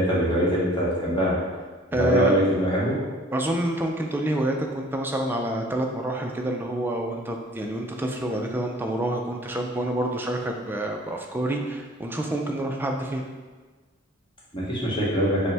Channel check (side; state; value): both; normal; correlation 0.51